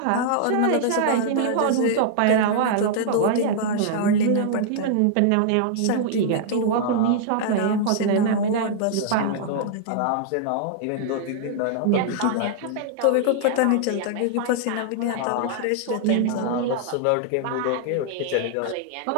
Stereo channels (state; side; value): different; both; correlation -0.01